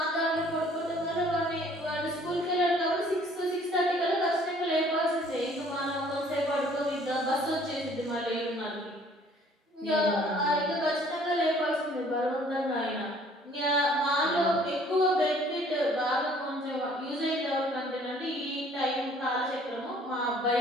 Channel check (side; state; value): both; normal; correlation 0.57